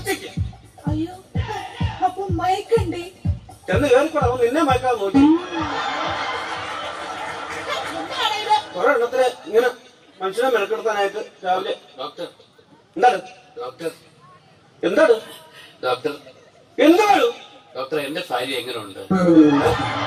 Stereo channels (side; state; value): both; identical; correlation 1.00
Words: അയ്യോ, അപ്പൊ മയക്കണ്ടേ? ചെന്ന് കയറിക്കൂടാ, അവൻ നിന്നെ മയക്കാതെ നോക്കി. എന്താണ് ഇത്? കുറെ എണ്ണത്തിന് ഇങ്ങനെ മനുഷ്യനെ മെനക്കെടുത്താനായിട്ട് രാവിലെ. ഡോക്ടർ, എന്താണ് ഡോക്ടർ, എന്താണ് ഡോക്ടർ, എന്താണ് ഡോക്ടർ, എന്റെ ഭാര്യ എങ്ങനെയുണ്ട്?